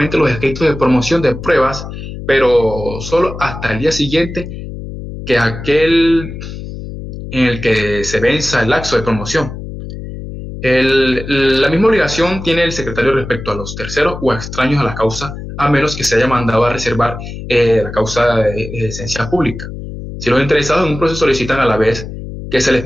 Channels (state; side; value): noise; left; hum, 10 dB below the sound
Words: los escritos de promoción de pruebas, pero solo hasta el día siguiente que aquel en el que se venza el lapso de promoción. La misma obligación tiene el secretario respecto a los terceros o extraños a la causa, a menos que se haya mandado a reservar la causa de esencia pública. Si los interesados en un proceso solicitan a la vez que se les